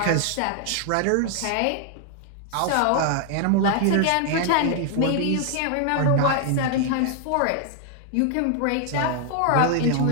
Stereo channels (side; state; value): both; different; correlation 0.00